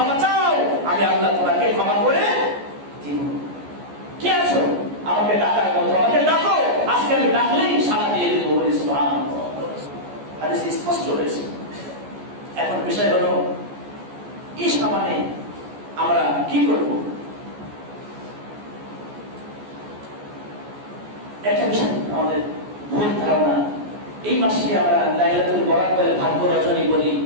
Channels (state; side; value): late; left; 14 ms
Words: চাও, আমি আল্লাহ তোমাকে ক্ষমা করে দিব। কি আছো আমাকে ডাকার মতো, আমাকে ডাকো, আজকে আমি ডাকলেই সাড়া দিয়ে দেবো বলে সুবহানাল্লাহ। হাদিস স্পষ্ট রয়েছে। এখন বিষয় হলো এই সামানে আমরা কি করব? একটা বিষয় আমাদের ভুল ধারণা, এই মাসকে আমরা লাইলাতুল বরাত বলে ভাগ্য রজনী বলি।